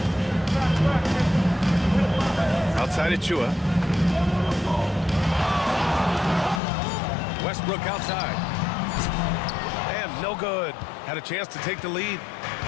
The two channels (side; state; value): right; drops out; at 6.6 s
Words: Outside Achua. Westbrook outside. And no good. Had a chance to take the lead.